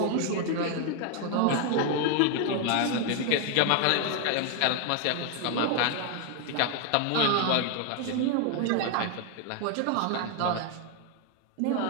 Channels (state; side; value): different; both; correlation 0.01